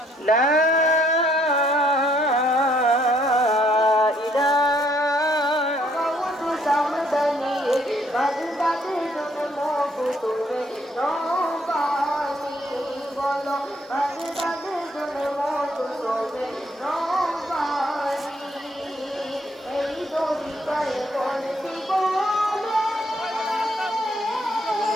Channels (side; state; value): both; normal; correlation 0.68